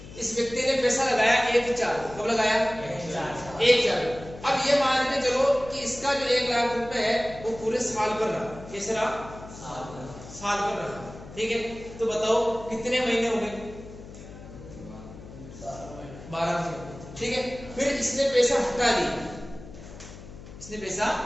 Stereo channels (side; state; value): left; noise; hum, 15 dB below the sound